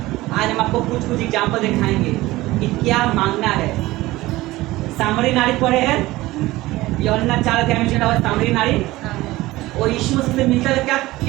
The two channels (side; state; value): left; quieter; 18.4 dB